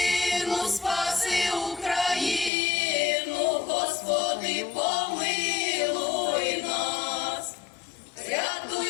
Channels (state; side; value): drops out; right; at 2.5 s